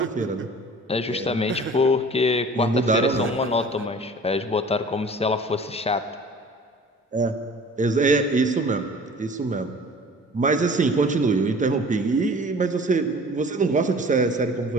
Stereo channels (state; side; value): normal; both; correlation 0.46